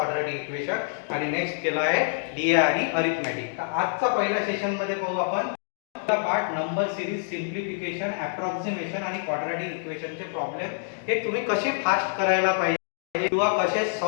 equation, आणि नेक्स्ट केला आहे DI आणि अरिथमॅटिक. तर आजचा पहिल्या सेशन मध्ये पाहू आपण part number series, simplification, approximation आणि क्वाड्रॅटिक इक्वेशनचे प्रॉब्लेम हे तुम्ही कसे फास्ट करायला पाहिजे किंवा कसे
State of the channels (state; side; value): silent; right; digital silence